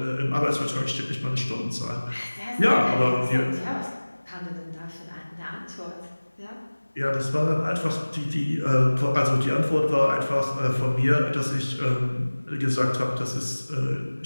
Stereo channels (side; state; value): both; inverted; correlation -1.00